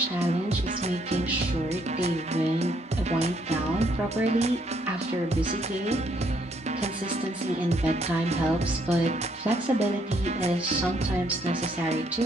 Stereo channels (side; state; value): both; normal; correlation 0.70